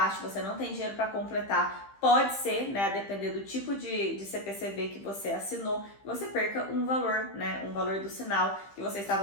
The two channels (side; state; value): right; late; 15 ms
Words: você não tem dinheiro para completar, pode ser, né, a depender do tipo de CPCV que você assinou, você perca um valor, né, um valor do sinal que você